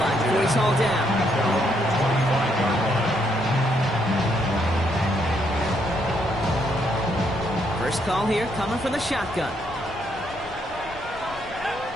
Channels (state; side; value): noise; left; rumble, 18 dB below the sound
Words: line before he's hauled down. First call here coming from the shotgun.